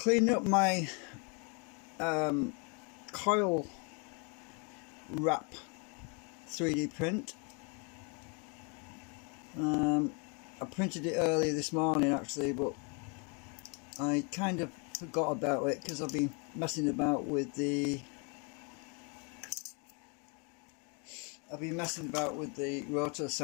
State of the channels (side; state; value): right; quieter; 34.8 dB